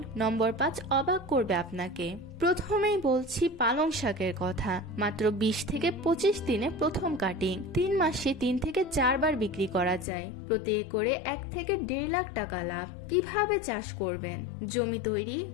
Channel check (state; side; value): drops out; right; at 10.1 s